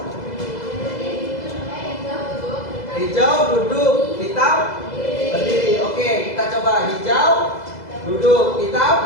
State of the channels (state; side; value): late; right; 2.0 ms